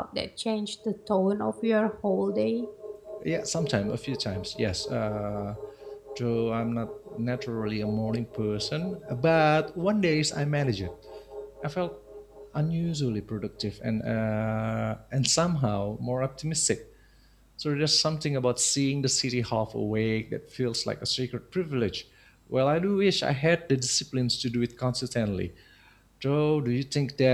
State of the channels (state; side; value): identical; both; correlation 1.00